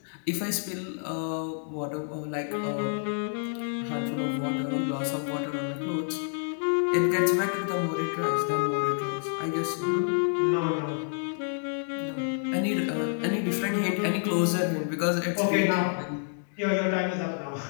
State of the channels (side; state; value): right; silent; digital silence